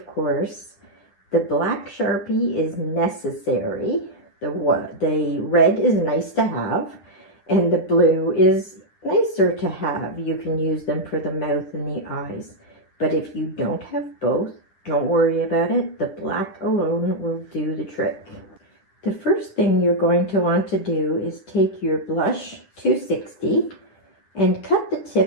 course. The black Sharpie is necessary. The red is nice to have, and the blue is nicer to have. You can use them for the mouth and the eyes. But if you don't have both, don't worry about it. The black alone will do the trick. The first thing you're going to want to do is take your blush 260 and cut the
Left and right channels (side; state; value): right; late; 10 ms